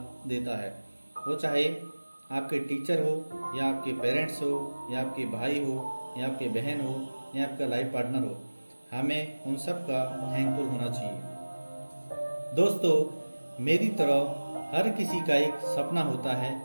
देता है। वो चाहे आपके टीचर हो या आपके पेरेंट्स हो या आपके भाई हो या आपके बहन हो या आपका लाइफ पार्टनर हो, हमें उन सब का थैंकफुल होना चाहिए। दोस्तों, मेरी तरह हर किसी का एक सपना होता है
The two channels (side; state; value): both; inverted; correlation -1.00